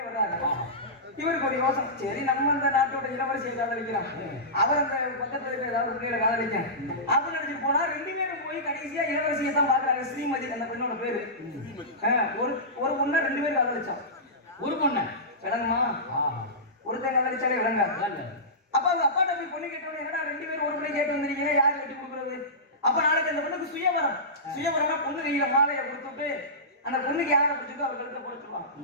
வர்றாரு. இவருக்கு ஒரு யோசனை, சரி நம்ம இந்த நாட்டோட இளவரசியை காதலிக்கிறான், அவர் அந்த பக்கத்துல இருக்க ஏதாவது பிள்ளைகளை காதலிக்க அப்படின்னு நினைச்சிட்டு போனா 2 பேரும் போய் கடைசியா இளவரசியை தான் பாக்குறாங்க. ஸ்ரீமதி அந்த பெண்ணோட பேரு. ஒரு பொண்ணை 2 பேரும் காதலிச்சான். ஒரு பொண்ணை விளங்குமா? ஒருத்தன் காதலிச்சாலே விளங்காது. அப்ப அவங்க அப்பாட்ட போய் பொண்ணு கேட்டோன்னு, என்னடா 2 பேரும் ஒரு பிள்ளை கேட்டு வந்திருக்கீங்க, யாரு கட்டி கொடுக்குறது? அப்ப நாளைக்கு அந்த பொண்ணுக்கு சுயவரம் பொண்ணு கையில மாலையை கொடுத்துட்டு அந்த பொண்ணுக்கு யாரை பிடிச்சதோ அவர் கழுத்தை போட சொல்லுவாங்க.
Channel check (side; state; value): both; normal; correlation -0.18